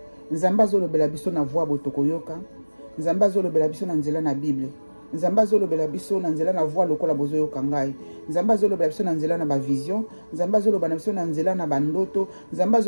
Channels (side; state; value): both; inverted; correlation -1.00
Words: Nzambe azolobela biso na voix botoko yoka, Nzambe azolobela biso na nzela na Bible, Nzambe azolobela biso na nzela na voix lokola bozo yoka ngai, Nzambe azolobela biso na nzela na ba vision, Nzambe azolobela biso na nzela na bandoto, Nzambe